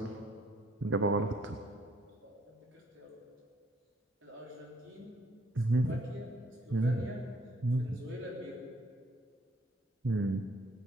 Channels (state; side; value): normal; both; correlation 0.64